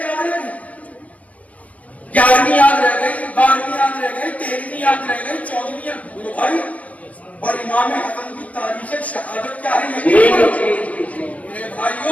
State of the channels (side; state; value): right; late; 0.069 ms